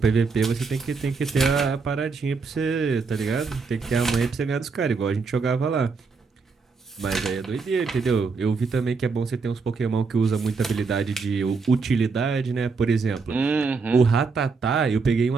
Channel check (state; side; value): quieter; left; 4.7 dB